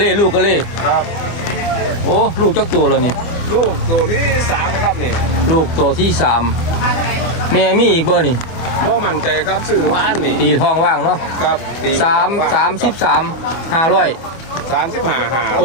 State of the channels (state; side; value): late; right; 25 ms